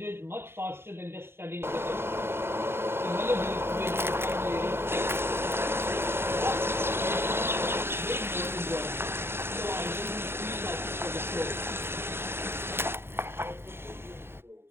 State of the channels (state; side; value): late; left; 0.11 ms